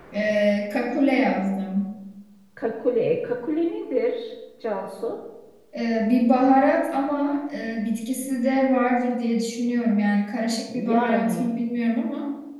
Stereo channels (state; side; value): identical; both; correlation 1.00